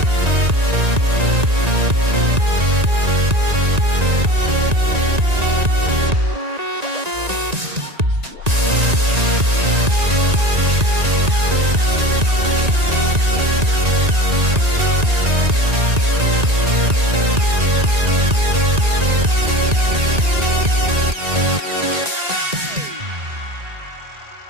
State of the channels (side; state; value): left; late; 1.9 ms